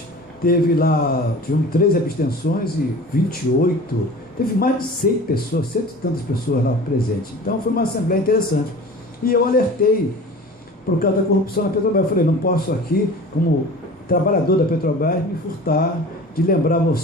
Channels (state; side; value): normal; both; correlation 0.39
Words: tiveram 13 abstenções e 28, teve mais de 100 pessoas, 100 e tantas pessoas lá presentes. Então foi uma assembleia interessante. E eu alertei por causa da corrupção na Petrobras. Eu falei, não posso aqui, como trabalhador da Petrobras, me furtar de lembrar a